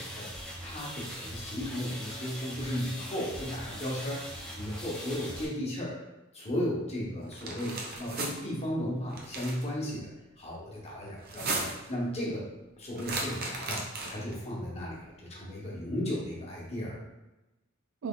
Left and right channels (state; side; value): normal; both; correlation 0.55